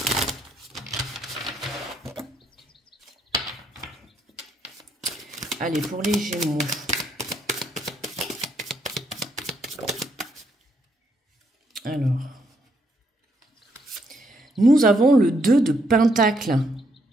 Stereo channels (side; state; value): both; normal; correlation 0.74